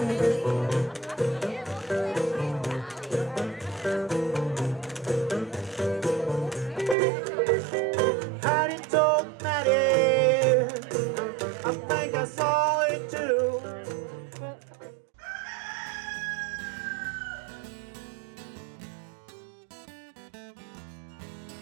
I think I saw it too.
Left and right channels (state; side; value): drops out; left; at 7.0 s